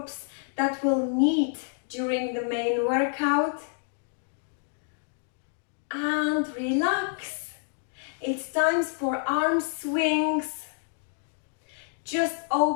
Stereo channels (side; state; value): right; silent; digital silence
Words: that we'll need during the main workout. And relax. It's time for arm swings. Just